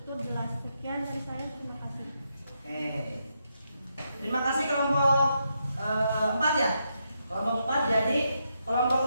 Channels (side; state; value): both; inverted; correlation -0.81